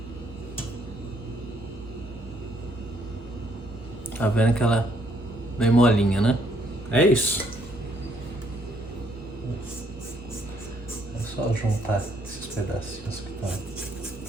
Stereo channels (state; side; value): normal; both; correlation 0.69